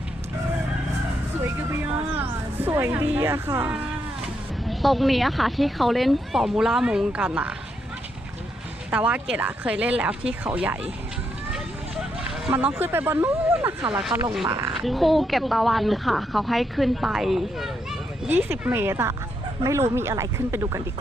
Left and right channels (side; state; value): both; normal; correlation 0.79